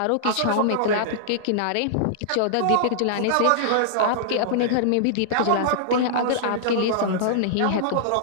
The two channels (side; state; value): both; different; correlation -0.01